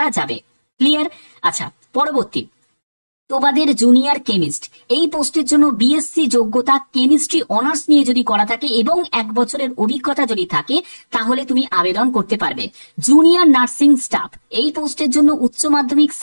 যাবে। ক্লিয়ার? আচ্ছা, পরবর্তী তোমাদের জুনিয়র কেমিস্ট, এই পোস্টের জন্য বিএসসি যোগ্যতা কেমিস্ট্রি অনার্স নিয়ে যদি করা থাকে এবং 1 বছরের অভিজ্ঞতা যদি থাকে তাহলে তুমি আবেদন করতে পারবে। জুনিয়র নার্সিং স্টাফ, এই পোস্টের জন্য উচ্চ মাধ্যমিক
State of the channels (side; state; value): both; inverted; correlation -1.00